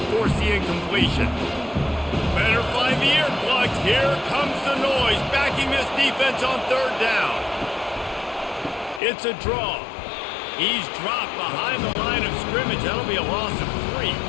force the incompletion? Better find the earplugs. Here comes the noise, backing this defense on 3rd down. It's a draw. He's dropped behind the line of scrimmage. That'll be a loss of 3.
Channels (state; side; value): drops out; right; at 9.0 s